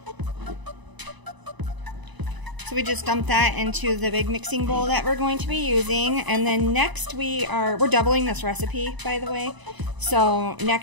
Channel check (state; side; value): late; left; 1.0 ms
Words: So we just dump that into the big mixing bowl that we're going to be using, and then next we're doubling this recipe, by the way. So